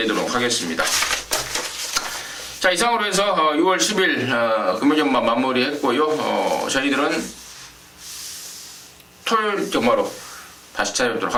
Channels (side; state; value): both; identical; correlation 1.00